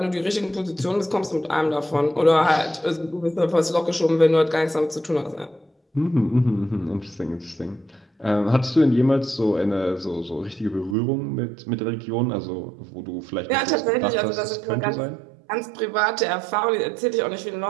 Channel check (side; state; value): left; drops out; at 11.0 s